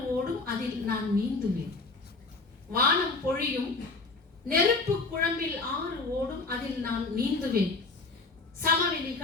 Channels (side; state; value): right; quieter; 3.7 dB